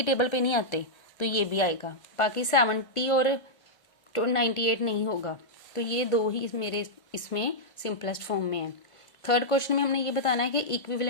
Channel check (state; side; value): late; right; 1.5 ms